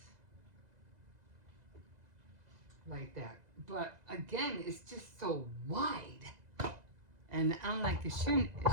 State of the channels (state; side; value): late; left; 2.0 ms